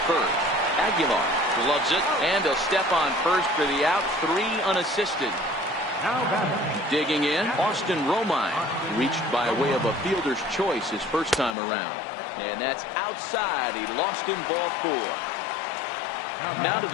first. Aguilar gloves it, and a step on first for the out. 3 unassisted. Digging in, Austin Romine reached by way of a fielder's choice his first time around, and that's outside. He lost him, ball 4. Now to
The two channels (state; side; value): drops out; right; at 11.6 s